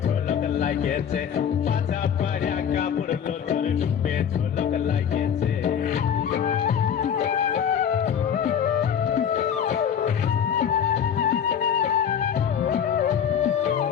ঝলক লাগিয়েছে পাছা পাড়িয়া কাপড় লোতর ডুবে ঝলক লাগিয়েছে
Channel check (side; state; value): right; quieter; 8.3 dB